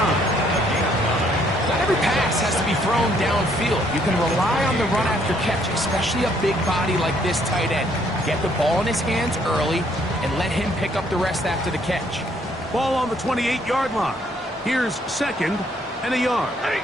Not every pass has to be thrown downfield. You can rely on the run after catch, especially a big body like this tight end. Get the ball in his hands early and let him pick up the rest after the catch. Ball on the 28-yard line. Here's 2nd and a yard.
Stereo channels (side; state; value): both; normal; correlation 0.67